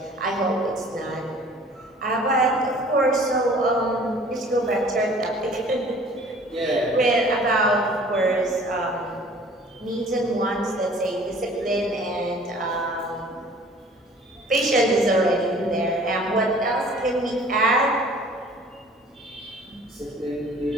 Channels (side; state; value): both; normal; correlation 0.50